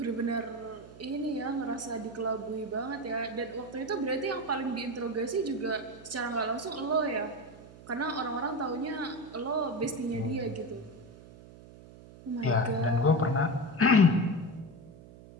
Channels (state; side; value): noise; right; hum, 19 dB below the sound